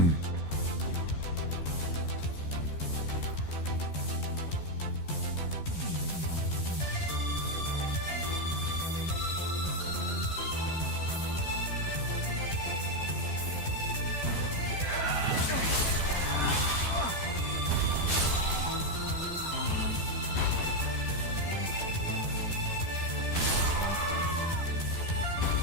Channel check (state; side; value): late; right; 12 ms